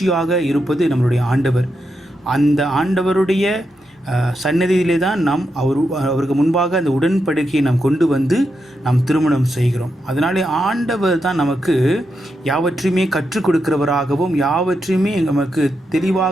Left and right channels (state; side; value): normal; both; correlation 0.85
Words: இருப்பது நம்மளுடைய ஆண்டவர். அந்த ஆண்டவருடைய சன்னதியிலே தான் நாம் அவருக்கு முன்பாக அந்த உடன்படிக்கையை நாம் கொண்டு வந்து நாம் திருமணம் செய்கிறோம். அதனாலே ஆண்டவர் தான் நமக்கு யாவற்றையுமே கற்றுக் கொடுக்கிறவராகவும் யாவற்றையுமே நமக்கு